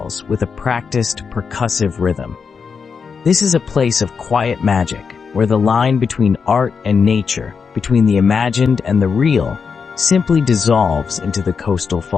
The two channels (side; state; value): right; quieter; 5.8 dB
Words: with a practiced, percussive rhythm. This is a place of quiet magic, where the line between art and nature, between the imagined and the real, simply dissolves into the coastal